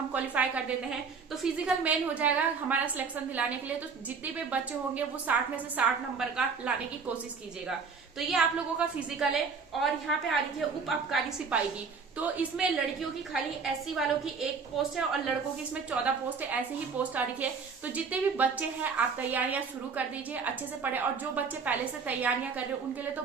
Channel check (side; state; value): left; quieter; 5.3 dB